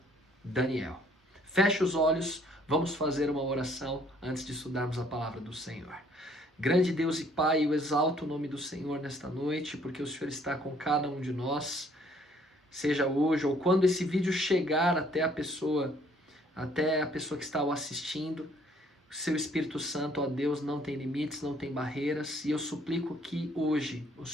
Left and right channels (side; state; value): both; normal; correlation 0.62